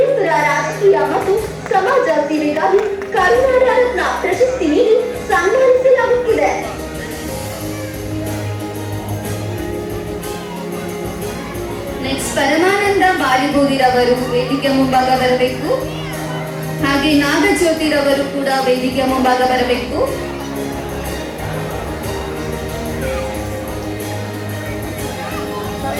ರಾಜಕೀಯ ಮತ್ತು ಸಮಾಜ ಸೇವೆಗಾಗಿ ಕರುನಾಡ ರತ್ನ ಪ್ರಶಸ್ತಿ ನೀಡಿ ಸನ್ಮಾನಿಸಲಾಗುತ್ತಿದೆ. ನೆಕ್ಸ್ಟ್ ಪರಮಾನಂದ ಬಾಲಿಬೋದಿರವರು ವೇದಿಕೆ ಮುಂಭಾಗ ಬರಬೇಕು. ಹಾಗೆ ನಾಗಜ್ಯೋತಿರವರು ಕೂಡ ವೇದಿಕೆ ಮುಂಭಾಗ ಬರಬೇಕು.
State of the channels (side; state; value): both; identical; correlation 1.00